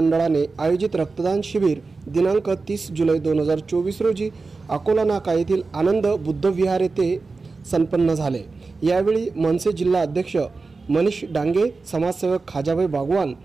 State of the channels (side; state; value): left; quieter; 4.0 dB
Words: आयोजित रक्तदान शिबिर दिनांक 30 जुलै 2024 रोजी अकोला नाका येथील आनंद बुद्ध विहार येथे संपन्न झाले। यावेळी मनसे जिल्हा अध्यक्ष मनीष डांगे, समाजसेवक खाजाभाई बागवान,